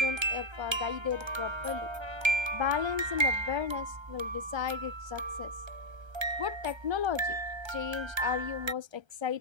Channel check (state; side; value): late; left; 1.3 ms